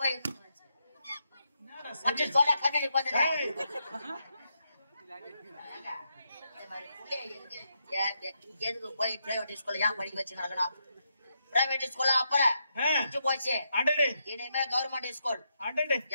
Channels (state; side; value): inverted; both; correlation -0.82